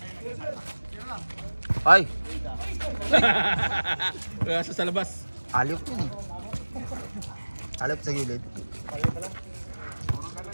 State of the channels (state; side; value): inverted; both; correlation -1.00